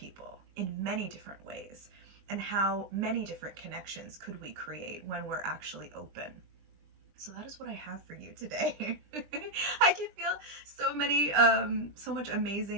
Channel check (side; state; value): left; late; 20 ms